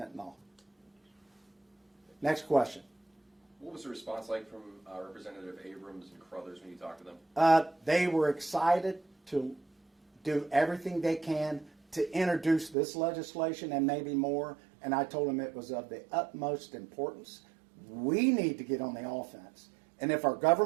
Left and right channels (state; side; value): drops out; left; at 12.8 s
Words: Next question. What was the response like from Representative Abrams and Crothers when you talked to them? They were excited to do everything they can to introduce this legislation and maybe more, and I told them it was of the utmost importance. We need to get on the offense, and if our